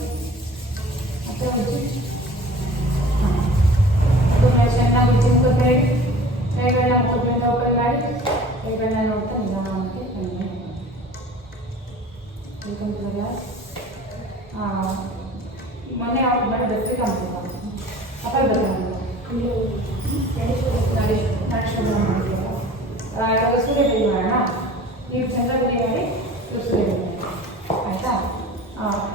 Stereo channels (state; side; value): normal; both; correlation 0.43